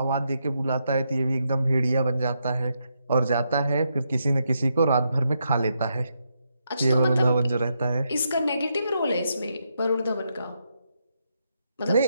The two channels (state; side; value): inverted; both; correlation -0.81